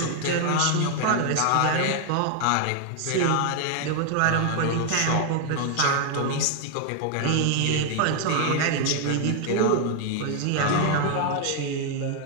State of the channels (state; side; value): different; both; correlation 0.00